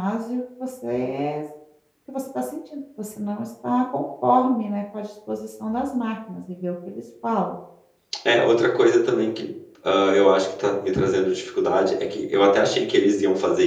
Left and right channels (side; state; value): both; identical; correlation 1.00